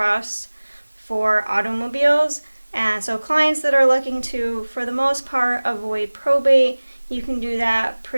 for automobiles. And so clients that are looking to, for the most part, avoid probate, you can do that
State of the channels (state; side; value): inverted; both; correlation -1.00